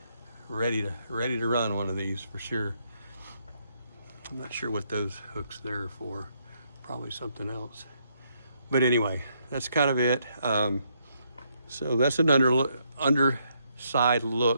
ready to run one of these for sure. I'm not sure what those hooks there are for. Probably something else. But anyway, that's kind of it. So that's an underside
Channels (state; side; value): inverted; both; correlation -0.75